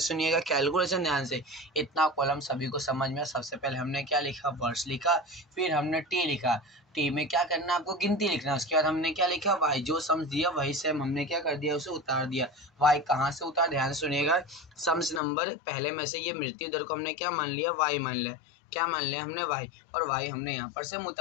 कैलकुलेशन ध्यान से, इतना कॉलम सभी को समझ में। सबसे पहले हमने क्या लिखा, वर्ष लिखा, फिर हमने टी लिखा, टी में क्या करना है आपको गिनती लिखना है। उसके बाद हमने क्या लिखा, वाई जो सम्स दिया वही सेम हमने क्या कर दिया, उसे उतार दिया। वाई कहाँ से उतार, ध्यान से सुनिएगा, सम्स नंबर पहले में से ये मृत्यु दर को हमने क्या मान लिया, वाई मान लिया, क्या मान लिया हमने, वाई, और वाई हमने यहाँ पर से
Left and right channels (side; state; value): right; drops out; at 15.2 s